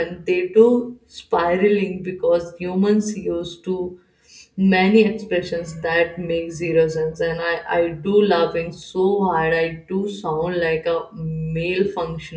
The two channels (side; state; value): both; identical; correlation 1.00